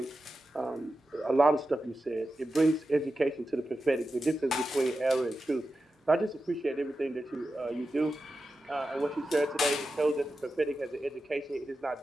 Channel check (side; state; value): both; normal; correlation 0.91